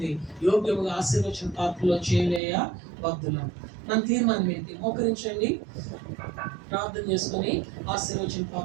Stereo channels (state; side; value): drops out; left; at 2.4 s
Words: యోగ్యముగా ఆశీర్వచన పాత్రలో చేయలేయ బద్దులం. మన తీర్మానం ఏంటి? మోకరించండి, ప్రార్థన చేసుకుని ఆశీర్వచన